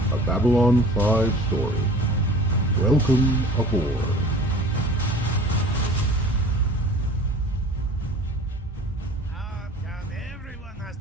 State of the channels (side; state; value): both; normal; correlation 0.44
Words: a Babylon 5 story. Welcome aboard. Come, everyone has